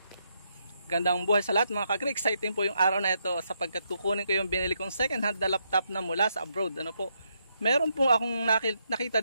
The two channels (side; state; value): both; inverted; correlation -0.79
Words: Gandang buhay sa lahat mga ka-agree. Exciting po yung araw na ito sapagkat kukunin ko yung binili kong second hand na laptop na mula sa abroad. Ano po? Meron po akong nakita